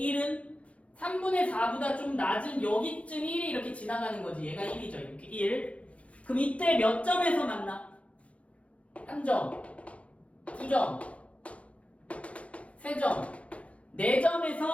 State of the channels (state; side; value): late; right; 0.063 ms